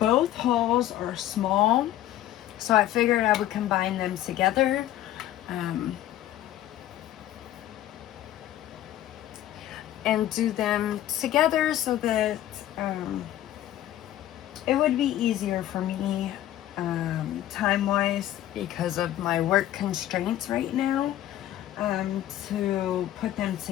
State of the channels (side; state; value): right; quieter; 13.0 dB